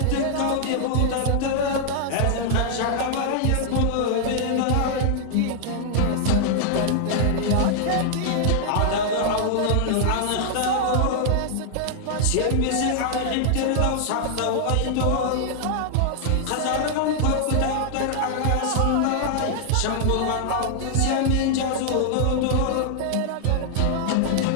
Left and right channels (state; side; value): different; both; correlation -0.01